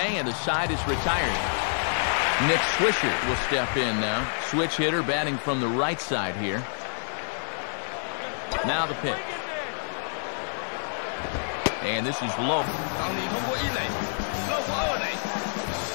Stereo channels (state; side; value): silent; right; digital silence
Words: and the side is retired. Nick Swisher will step in now. Switch hitter batting from the right side here. Now the pitch. And this is low.